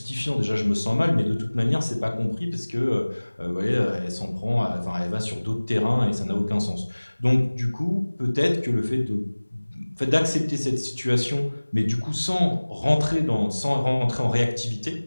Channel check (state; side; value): inverted; both; correlation -1.00